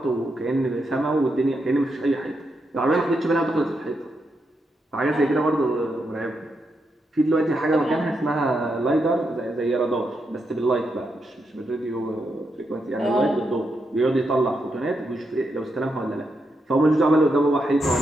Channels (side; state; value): both; normal; correlation 0.83